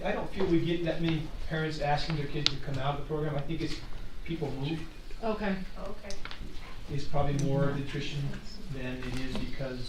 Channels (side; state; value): both; identical; correlation 1.00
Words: don't feel we get that many parents asking their kids to come out of the program. I think it's people move. Okay. Okay. It's probably more nutrition than it is